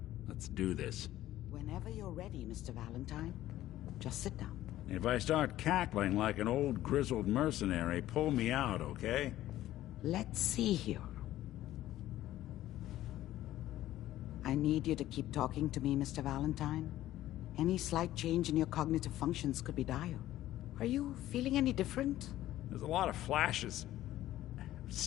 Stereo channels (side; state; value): right; quieter; 14.2 dB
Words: let's do this. Whenever you're ready, Mr. Valentine, just sit down. If I start cackling like an old grizzled mercenary, pull me out, okay? Let's see here. I need you to keep talking to me, Mr. Valentine. Any slight change in your cognitive functions could be dire. Are you feeling any different? There's a lot of flashes.